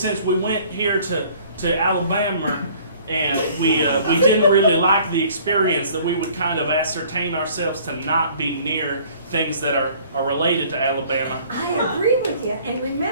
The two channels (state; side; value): inverted; both; correlation -0.54